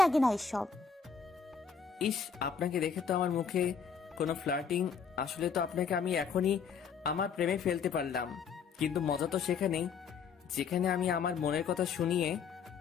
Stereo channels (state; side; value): quieter; right; 6.1 dB